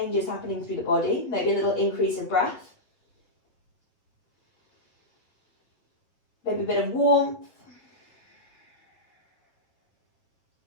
happening through the body. Maybe a little increase in breath. Maybe a bit of warmth.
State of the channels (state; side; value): late; right; 8.5 ms